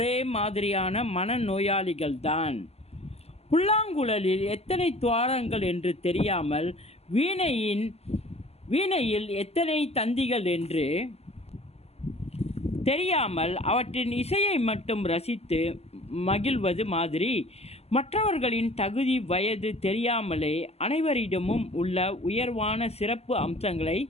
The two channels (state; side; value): late; right; 0.30 ms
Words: மாதிரியான மனநோயாளிகள்தான். புல்லாங்குழலில் எத்தனை துவாரங்கள் என்று தெரியாமல், வீணையில் எத்தனை தந்திகள் என்று தெரியாமல் அவற்றின் இசையை மட்டும் ரசித்து மகிழ்வது மாதிரி, மற்றவர்களின் தகுதி வயது தெரியாமலே அனைவரிடமும் உள்ள உயர்வான சிறப்பு அம்சங்களை